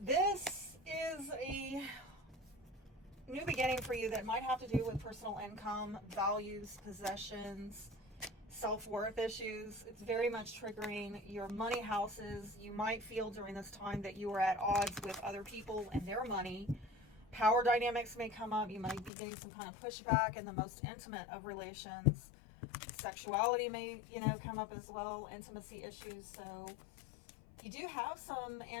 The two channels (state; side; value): drops out; right; at 19.1 s